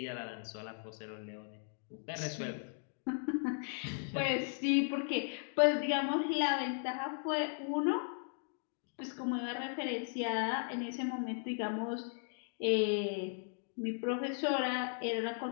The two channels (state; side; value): silent; right; 53 dB below the other